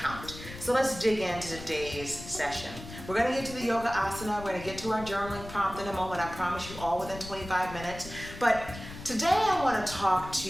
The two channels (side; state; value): left; noise; rumble, 13 dB below the sound